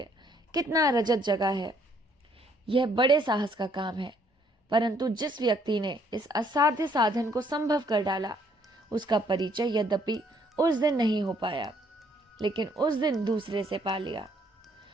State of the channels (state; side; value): normal; both; correlation 0.66